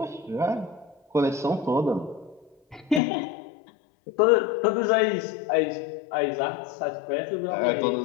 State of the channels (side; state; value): right; drops out; at 3.0 s